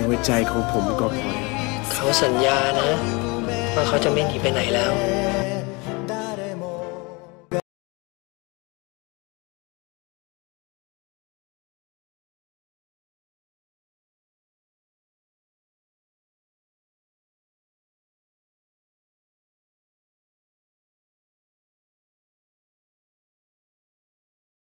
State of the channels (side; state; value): right; quieter; 27.4 dB